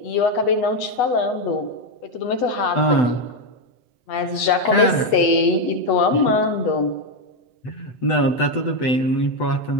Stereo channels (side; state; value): right; late; 8.2 ms